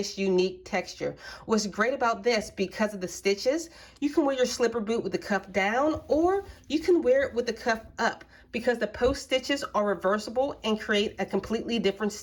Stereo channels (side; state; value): both; identical; correlation 1.00